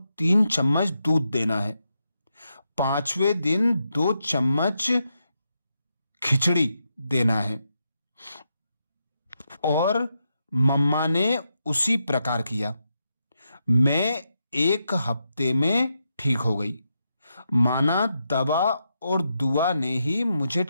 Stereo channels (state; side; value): inverted; both; correlation -0.84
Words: 3 चम्मच दूध देना है। 5वें दिन 2 चम्मच खिचड़ी देना है। और मम्मा ने उसी प्रकार किया। मैं 1 हफ्ते में ठीक हो गई। माना दवा और दुआ ने ही मुझे